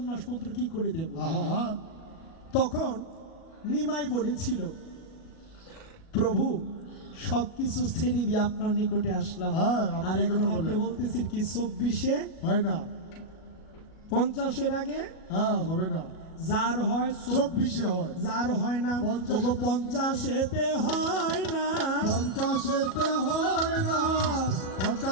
মন্ত্র কি করে দেব? আহা তখন নিমাই বলেছিল প্রভু সবকিছু ছেড়ে দিয়ে আপনার নিকটে আসলাম, হ্যাঁ, আপনি আর এই এখন কথা আপনি বলেন। বলতেছেন কি 24-এ হয় না, 50-এর আগে হ্যাঁ হবে না, যার হয় 24-এ হয়। যার হয় না 50-এতে হয় না, 50-এতে হয় না,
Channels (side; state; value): right; late; 37 ms